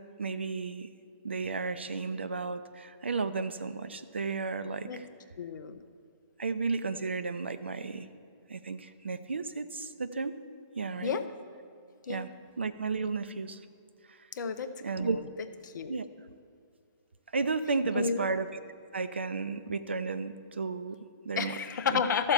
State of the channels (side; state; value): both; inverted; correlation -0.55